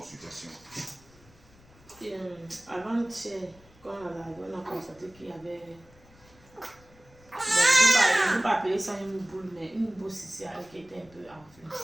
Avant-hier, quand on a constaté qu'il y avait... Bon, je ne peux pas appeler ça une boule, mais une boule céciale qui était un peu enflée.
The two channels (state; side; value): noise; left; rumble, 26 dB below the sound